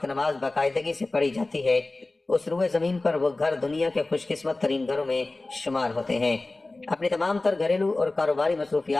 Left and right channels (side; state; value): right; quieter; 3.1 dB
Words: نماز باقاعدگی سے پڑھی جاتی ہے اس روئے زمین پر وہ گھر دنیا کے خوش قسمت ترین گھروں میں شمار ہوتے ہیں۔ اپنی تمام تر گھریلو اور کاروباری